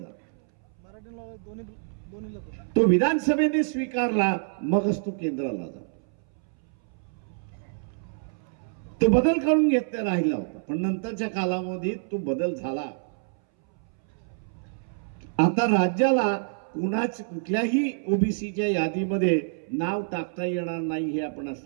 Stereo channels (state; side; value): silent; left; 60 dB below the other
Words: तो विधानसभेने स्वीकारला मगच तो केंद्राला जातो. तो बदल करून घेतला राहिला होता पण नंतरच्या कालावधीत तो बदल झाला. आता राज्याला कुठल्याही ओबीसीच्या यादीमध्ये नाव टाकता येणार नाही हे आपण